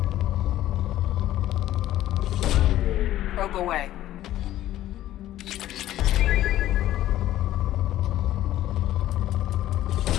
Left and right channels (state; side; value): quieter; right; 13.7 dB